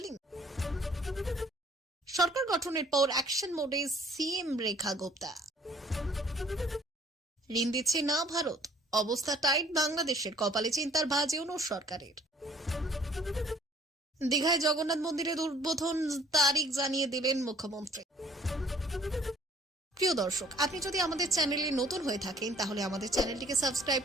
সরকার গঠনের পর অ্যাকশন মোডে সিএম রেখা গুপ্তা। ঋণ দিচ্ছে না ভারত, অবস্থা টাইট বাংলাদেশের, কপালে চিন্তার ভাঁজ ইউনূস সরকারের। দীঘায় জগন্নাথ মন্দিরের উদ্বোধন তারিখ জানিয়ে দিলেন মুখ্যমন্ত্রী। প্রিয় দর্শক, আপনি যদি আমাদের চ্যানেলে নতুন হয়ে থাকেন তাহলে আমাদের চ্যানেলটিকে সাবস্ক্রাইব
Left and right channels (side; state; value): both; normal; correlation 0.58